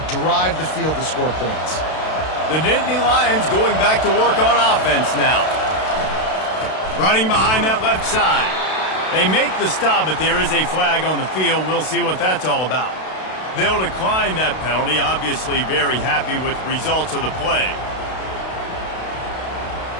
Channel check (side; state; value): right; late; 32 ms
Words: drive the field to score points. The Nittany Lions going back to work on offense now. Running behind that left side. They make the stop, but there is a flag on the field. We'll see what that's all about. They'll decline that penalty, obviously very happy with the results of the play.